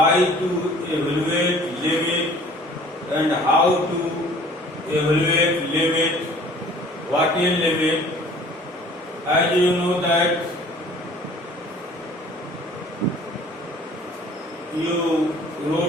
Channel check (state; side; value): normal; both; correlation 0.51